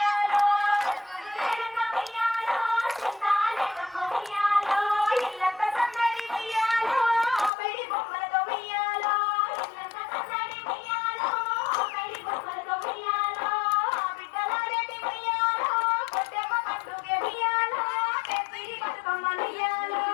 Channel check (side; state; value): right; drops out; at 7.5 s